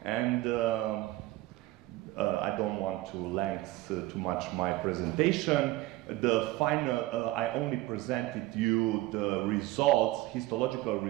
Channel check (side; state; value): left; quieter; 18.0 dB